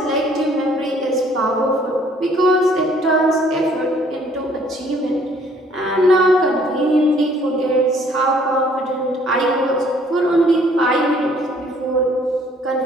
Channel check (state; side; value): normal; both; correlation 0.60